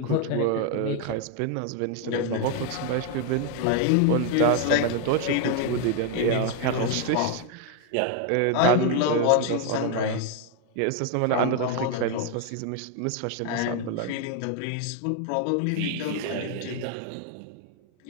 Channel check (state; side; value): different; both; correlation 0.01